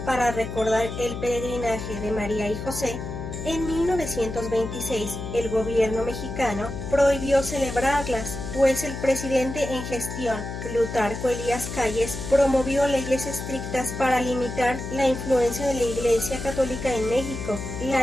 para recordar el peregrinaje de María y José, en 1926 el gobierno mexicano prohibió celebrarlas, pues el presidente en gestión, Plutarco Elías Calles, promovió leyes estrictas para limitar la influencia de la Iglesia Católica en México.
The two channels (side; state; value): left; noise; hum, 7 dB below the sound